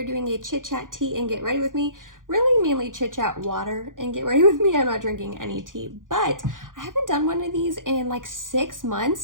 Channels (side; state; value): left; late; 0.89 ms